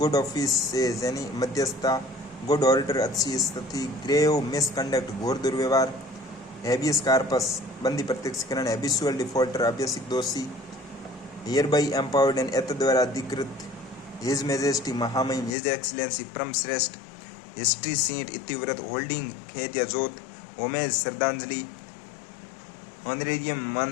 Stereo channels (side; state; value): right; drops out; at 15.6 s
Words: ऑफिसेज यानी मध्यस्थता, गुड ऑर्डर अच्छी स्थिति, ग्रेव मिसकंडक्ट घोर दुर्व्यवहार, हैबियस कार्पस बंदी प्रत्यक्षीकरण, हैबिचुअल डिफॉल्टर अभ्यासिक दोषी, हियर बाई एम्पावर्ड एंड एत द्वारा अधिकृत, हिज मेजेस्टी महामहिम, हिज एक्सीलेंसी परम श्रेष्ठ, हिस्ट्री सीट इतिव्रत, होल्डिंग खेत या जोत, होमेज श्रद्धांजलि, ऑनरेरियम